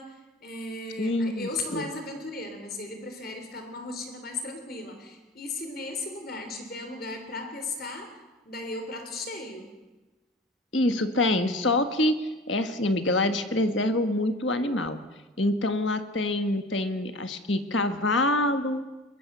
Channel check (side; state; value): both; normal; correlation 0.39